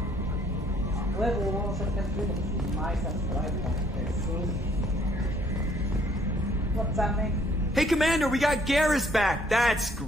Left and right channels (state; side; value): normal; both; correlation 0.63